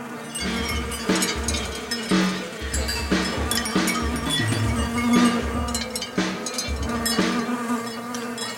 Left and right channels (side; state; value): both; identical; correlation 1.00